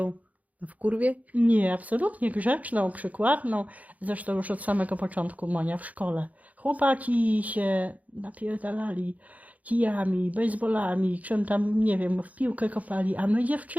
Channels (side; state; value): left; late; 0.073 ms